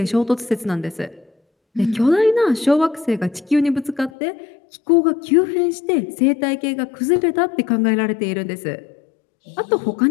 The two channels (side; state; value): right; drops out; at 4.1 s